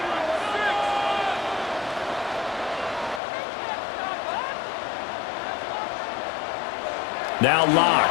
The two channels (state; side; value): drops out; right; at 3.2 s